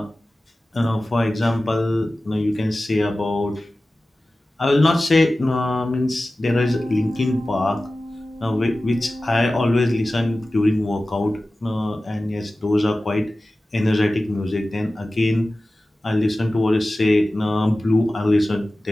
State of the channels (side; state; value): both; normal; correlation 0.96